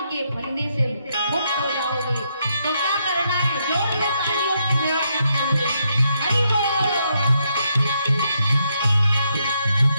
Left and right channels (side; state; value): both; inverted; correlation -0.77